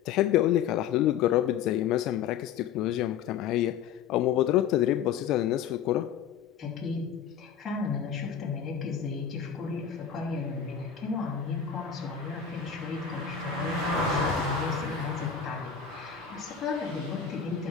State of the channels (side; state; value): right; quieter; 8.0 dB